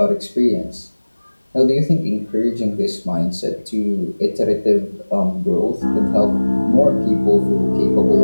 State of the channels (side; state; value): both; inverted; correlation -1.00